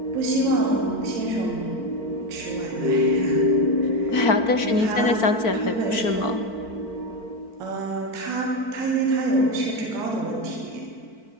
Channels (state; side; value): late; right; 4.5 ms